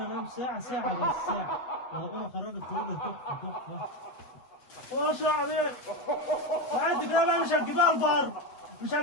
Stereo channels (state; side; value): late; right; 8.1 ms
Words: انام ساعة بس ساعة. وهقوم اخرجك خروجة تحفة. ما شاء عليك. وانت كده بقى مش